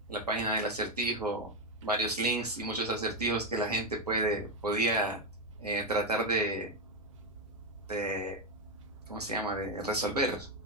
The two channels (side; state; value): both; normal; correlation 0.08